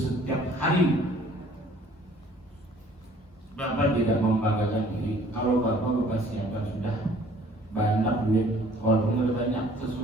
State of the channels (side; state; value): both; normal; correlation 0.55